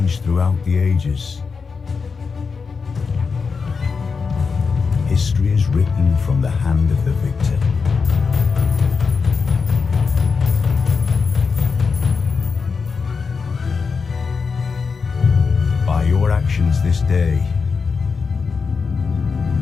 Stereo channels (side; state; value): right; quieter; 5.1 dB